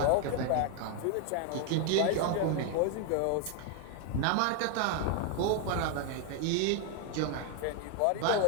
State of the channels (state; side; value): different; both; correlation 0.00